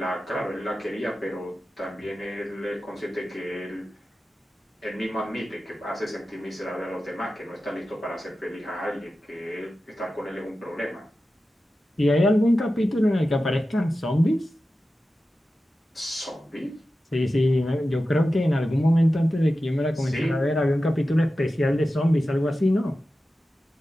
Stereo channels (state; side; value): normal; both; correlation 0.93